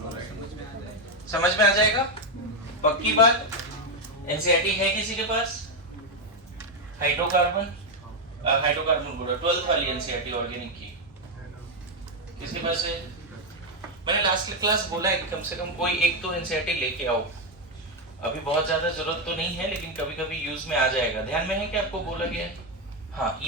समझ में आ जाएगा? पक्की बात? एनसीईआरटी है किसी के पास? हाइड्रोकार्बन बोला 12th वाली एनसीईआरटी ऑर्गेनिक की किसके पास है? मैंने लास्ट क्लास बोला है कि कम से कम कोई एक तो एनसीईआरटी लेके आओ। अभी बहुत ज्यादा जरूरत तो नहीं है, लेकिन कभी कभी यूज में आ जाएगा। ध्यान में है कि आपको बोला गया है? हाँ,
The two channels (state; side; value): normal; both; correlation 0.05